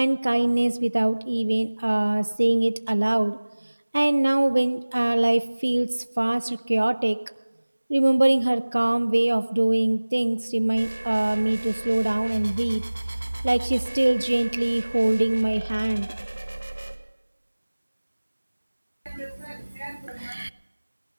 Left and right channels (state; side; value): inverted; both; correlation -1.00